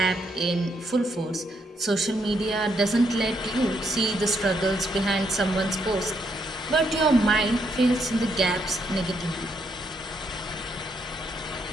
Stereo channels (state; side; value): normal; both; correlation 0.76